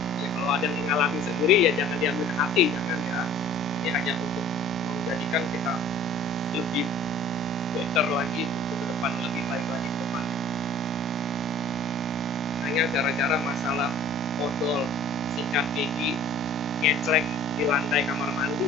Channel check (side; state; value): both; normal; correlation 0.49